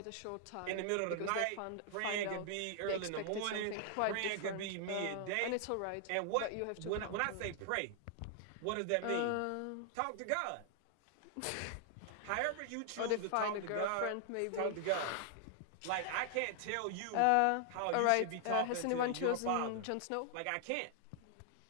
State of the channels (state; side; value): different; both; correlation 0.00